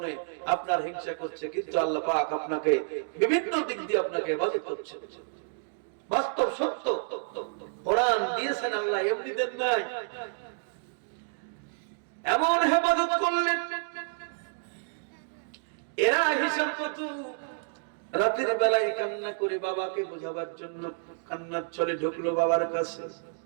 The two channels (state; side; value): silent; left; digital silence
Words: আপনার হিংসা করছে, কিন্তু আল্লাহ পাক আপনাকে বিভিন্ন দিক দিয়ে আপনাকে হেফাজত করছে। বাস্তব সত্য, কোরআন দিয়েছেন আল্লাহ, এমনি দেন নাই। এমন হেফাজত করলেন, এরা হিসাব কত রাতের বেলায় কান্না করে বাবাকে বোঝাবার জন্য কান্নার ছলে ঢুকলো বাবার কাছে।